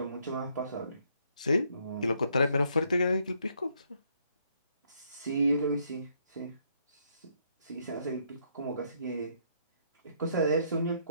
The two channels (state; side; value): inverted; both; correlation -0.71